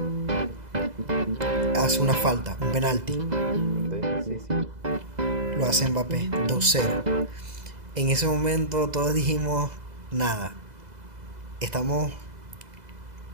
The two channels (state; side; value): late; left; 2.0 ms